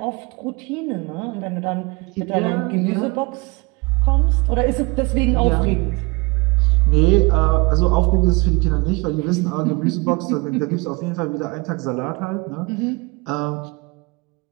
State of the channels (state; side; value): quieter; left; 26.7 dB